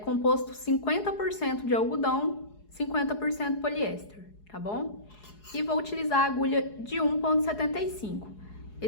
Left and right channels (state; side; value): late; right; 4.7 ms